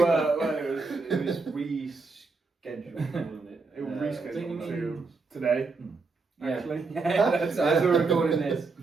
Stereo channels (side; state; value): left; quieter; 4.1 dB